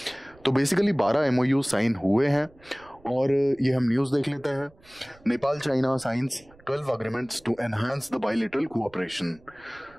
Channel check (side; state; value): right; noise; rumble, 27 dB below the sound